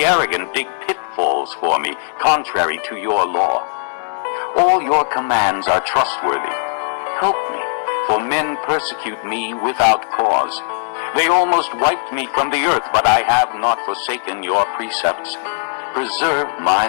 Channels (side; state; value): right; silent; 67 dB below the other